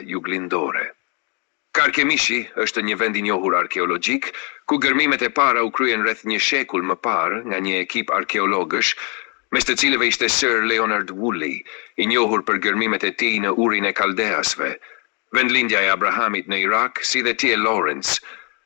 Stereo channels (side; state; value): right; quieter; 34.5 dB